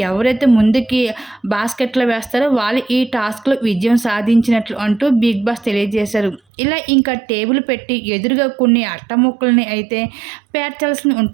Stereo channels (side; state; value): left; drops out; at 6.4 s